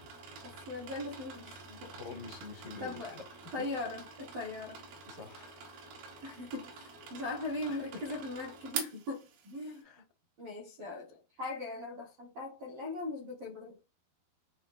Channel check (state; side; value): late; left; 12 ms